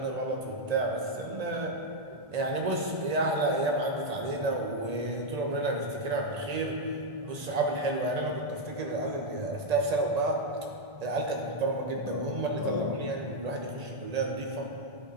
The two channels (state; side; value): late; left; 1.8 ms